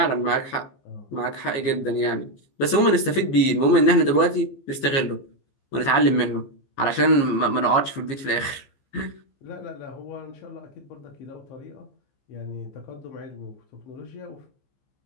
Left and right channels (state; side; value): late; right; 15 ms